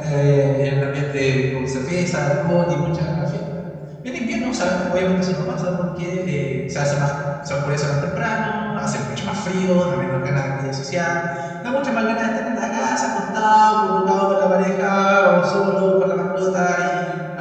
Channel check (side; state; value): both; identical; correlation 1.00